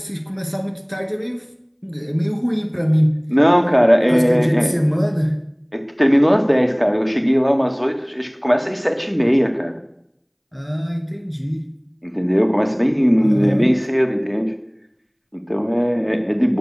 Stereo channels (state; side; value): identical; both; correlation 1.00